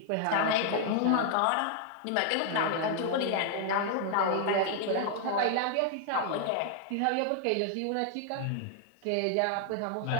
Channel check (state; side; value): different; both; correlation 0.00